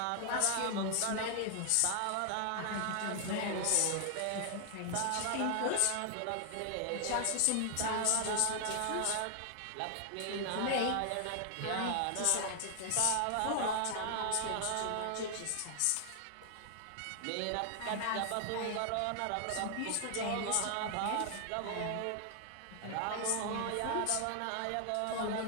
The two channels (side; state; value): both; different; correlation 0.00